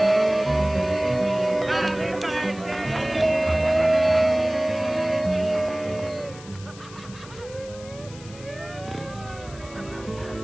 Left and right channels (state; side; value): noise; left; hiss, 19 dB below the sound